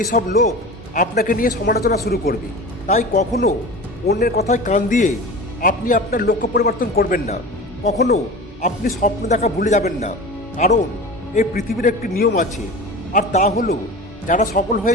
সব লোক আপনাকে নিয়ে সমালোচনা শুরু করবে। তাই কখনো অন্যের কথায় কান দিয়ে আপনি আপনার লক্ষ্য পরিবর্তন করবেন না, কখনো আপনি স্বপ্ন দেখা ভুলে যাবেন না। কারণ এই পৃথিবীর একটি নিয়ম আছে, আর তা হলো যারা সফল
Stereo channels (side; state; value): both; normal; correlation 0.33